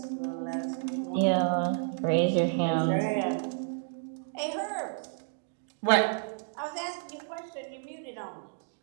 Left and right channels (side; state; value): left; silent; digital silence